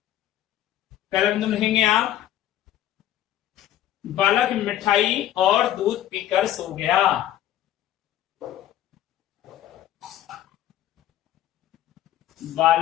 बिंदु लिखेंगे आप, बालक मिठाई और दूध पीकर सो गया।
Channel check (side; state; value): right; quieter; 12.4 dB